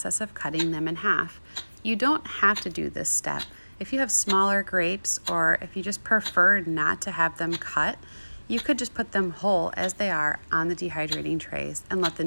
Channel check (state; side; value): inverted; both; correlation -1.00